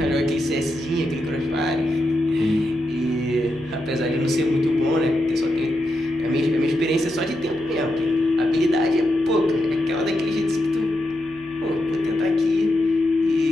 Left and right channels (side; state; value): left; noise; hum, 24 dB below the sound